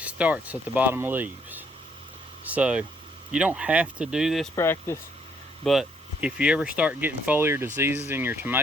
starts at the bottom leaves. So you don't have to do this practice, but if you ever start getting foliar diseases in your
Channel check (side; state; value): both; normal; correlation 0.67